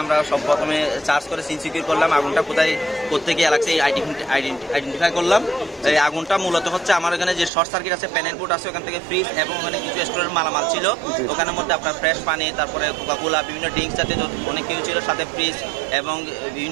আমরা সব প্রথমে চার্জ করে সিন সিকিউর করলাম। আগুনটা কোথায় কোথেকে লাগছে আইডেন্টিফাই করলাম। এই আগুনটা মূলত হচ্ছে আমার এখানে যে শর্ট সার্কিট আছে, প্যানেল বোর্ড আছে, ওখান থেকে ফ্রিজ এবং ওখানে কিছু স্টোরের মালামাল ছিল। ওখানের মধ্যে আপনার ফ্রেশ পানি, তারপরে কোকাকোলা, বিভিন্ন ড্রিঙ্কস জাতীয় অনেক কিছু ছিল, সাথে ফ্রিজ এবং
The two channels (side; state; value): left; drops out; at 7.5 s